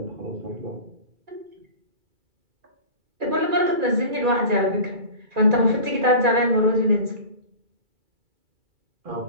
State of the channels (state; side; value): late; left; 2.3 ms